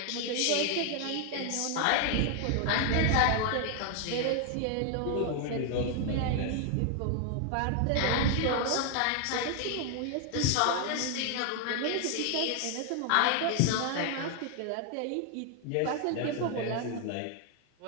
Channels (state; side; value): different; both; correlation 0.00